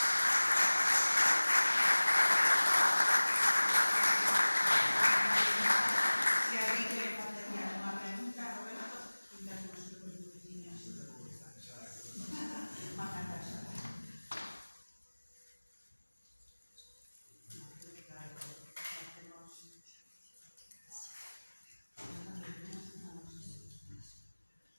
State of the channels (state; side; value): inverted; both; correlation -1.00